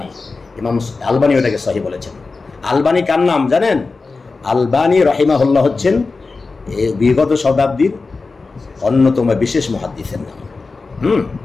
ইমাম আলবানী ওটাকে সহিহ বলেছেন। আলবানী কার নাম জানেন? আলবানী রাহিমাহুল্লাহ হচ্ছেন বিগত শতাব্দীর অন্যতম বিশেষ মুহাদ্দিসের নাম।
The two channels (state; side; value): quieter; right; 4.0 dB